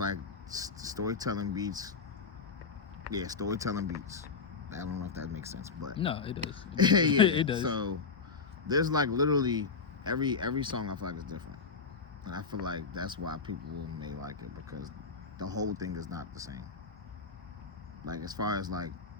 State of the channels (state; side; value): quieter; right; 5.0 dB